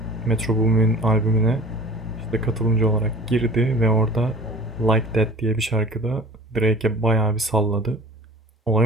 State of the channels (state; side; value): normal; both; correlation 0.44